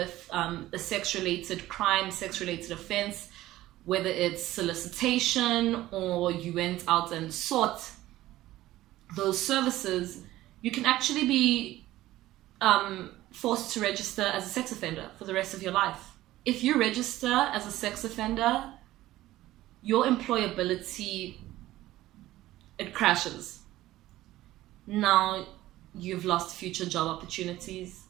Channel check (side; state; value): left; quieter; 15.7 dB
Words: a sex-related crime, sex-related offense, whether it's solicitation or you went out and sought those services, you can actually be forced to register as a sex offender for the rest of your life. If you register as a sex offender, your employability, it crashes. Now you've lost future job opportunities,